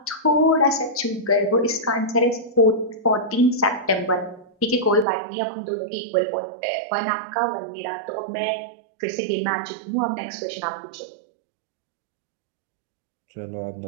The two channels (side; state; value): left; drops out; at 5.1 s